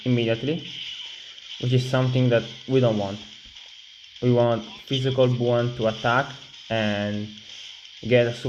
immediately, which is something that we don't want. We want physical Buon to attack and get a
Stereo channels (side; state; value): both; identical; correlation 1.00